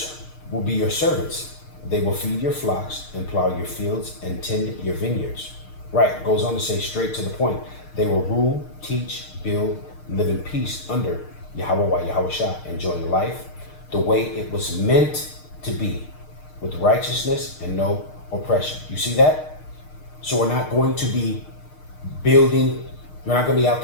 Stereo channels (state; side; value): late; right; 6.6 ms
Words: will be your servants. They will feed your flocks and plow your fields and tend your vineyards. Right. It goes on to say straight to the point. They will rule, teach, build, live in peace under Yahweh Shah, enjoying life the way it was meant to be, with righteousness and no oppression. You see that? So we're not going to be building, we're not going to be out